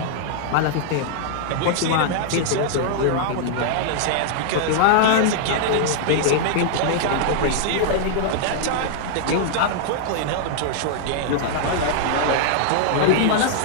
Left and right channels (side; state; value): both; different; correlation -0.01